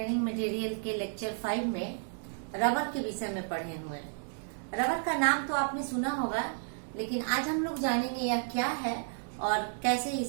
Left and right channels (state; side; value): silent; left; digital silence